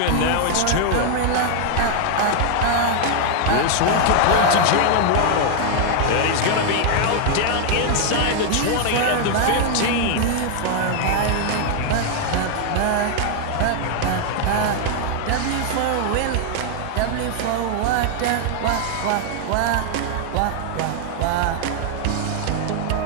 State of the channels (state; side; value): different; both; correlation 0.00